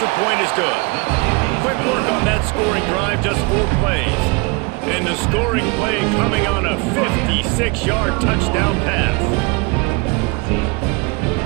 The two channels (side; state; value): left; quieter; 29.1 dB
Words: point is good. Quick work on that scoring drive, just 4 plays. And the scoring play coming on a 56-yard touchdown pass.